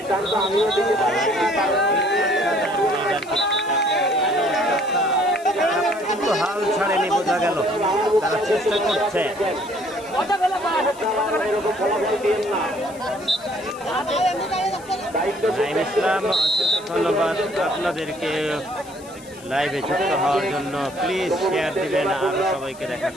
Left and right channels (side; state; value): left; noise; hiss, 21 dB below the sound